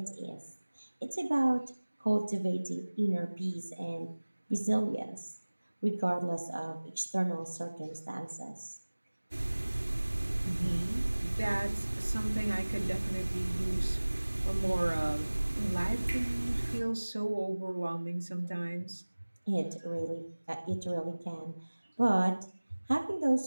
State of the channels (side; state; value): both; inverted; correlation -1.00